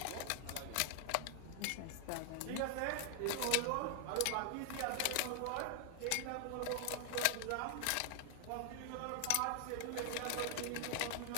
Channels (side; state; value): both; different; correlation 0.00